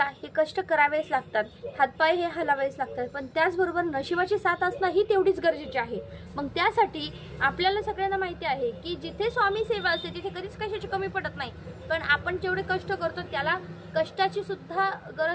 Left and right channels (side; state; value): both; identical; correlation 1.00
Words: हे कष्ट करावेच लागतात, हातपाय हे हलावेच लागतात, पण त्याचबरोबर नशिबाची साथ असणं ही तेवढीच गरजेची आहे। मग त्यासाठी आपल्याला सगळ्यांना माहिती आहे की जिथे स्वामी सेवा असते तिथे कधीच कशाची कमी पडत नाही, पण आपण जेवढे कष्ट करतो त्याला कष्टाची सुद्धा